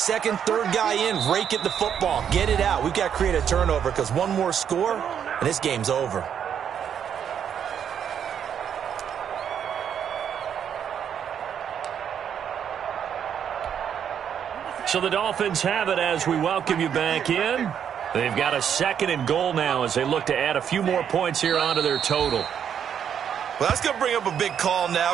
third guy in, rake at the football. Get it out. We've got to create a turnover because one more score, and this game's over. So the Dolphins have it as we welcome you back in. They've got a second and goal now as they look to add a few more points here onto their total. Well, that's going to bring up a big call now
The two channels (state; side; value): quieter; left; 8.5 dB